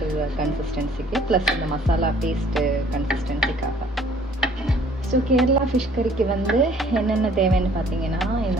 கன்சிஸ்டன்சிக்கு, ப்ளஸ் இந்த மசாலா பேஸ்ட்டு கன்சிஸ்டன்சிக்காக. ஸோ கேரளா ஃபிஷ் கறிக்கு வந்து என்னென்ன தேவைன்னு பார்த்தீங்கன்னா,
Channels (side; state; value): both; normal; correlation 0.57